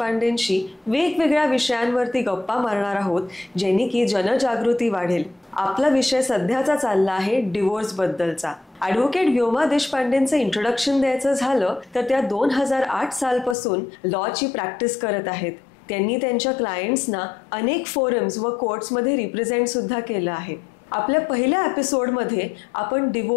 वेगवेगळ्या विषयांवरती गप्पा मारणार आहोत, जेणे की जनजागृती वाढेल. आपला विषय सध्याचा चालला आहे डिवोर्स बद्दलचा. ॲडव्होकेट व्योमा देशपांडेंचं इंट्रोडक्शन द्यायचं झालं तर त्या 2008 सालपासून लॉची प्रॅक्टिस करत आहेत. त्यांनी त्यांच्या क्लायंट्सना अनेक फोरम्स व कोर्ट्समध्ये रिप्रेझेंट सुद्धा केलं आहे. आपल्या पहिल्या एपिसोडमध्ये आपण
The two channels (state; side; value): drops out; right; at 13.6 s